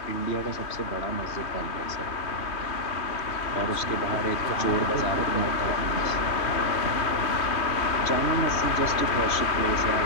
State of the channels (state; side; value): late; right; 2.5 ms